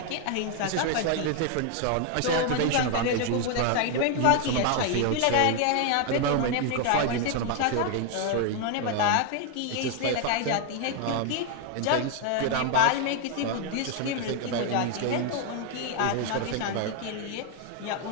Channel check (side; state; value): both; different; correlation 0.00